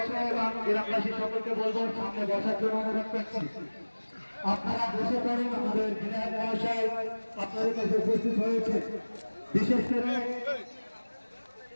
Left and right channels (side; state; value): both; inverted; correlation -1.00